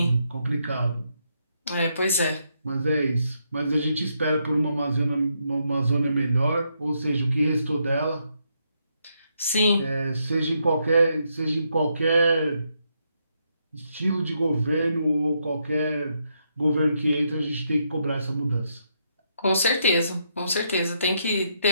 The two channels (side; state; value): both; inverted; correlation -0.78